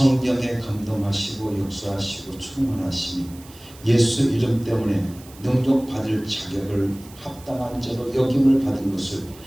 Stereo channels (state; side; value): noise; right; hiss, 22 dB below the sound